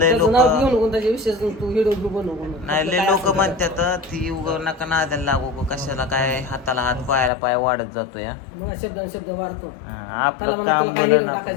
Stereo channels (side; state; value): right; drops out; at 7.3 s